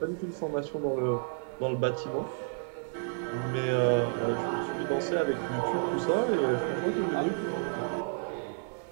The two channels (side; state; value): left; silent; digital silence